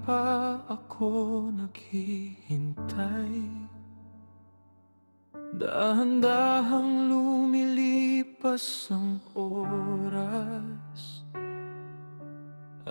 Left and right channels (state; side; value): inverted; both; correlation -1.00